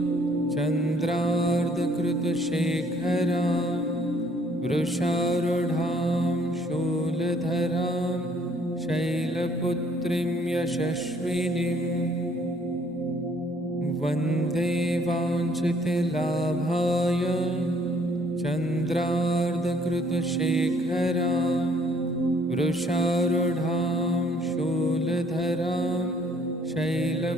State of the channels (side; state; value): both; normal; correlation 0.62